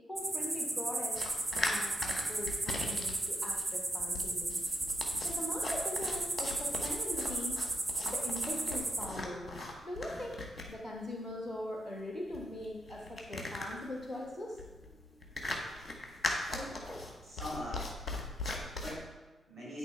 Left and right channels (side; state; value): both; normal; correlation 0.79